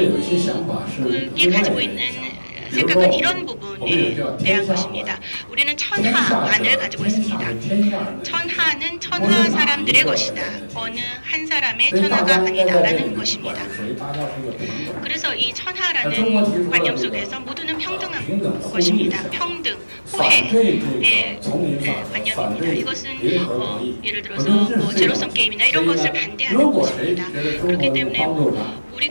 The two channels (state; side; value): inverted; both; correlation -1.00